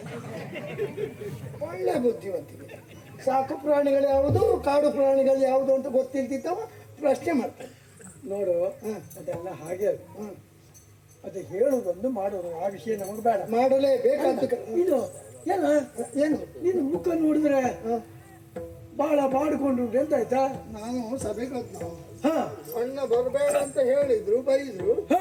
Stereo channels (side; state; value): both; identical; correlation 1.00